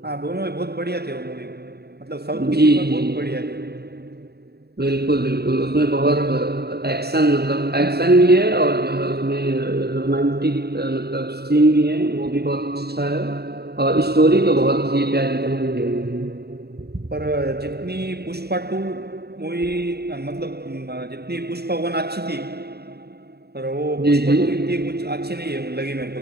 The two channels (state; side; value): late; left; 0.47 ms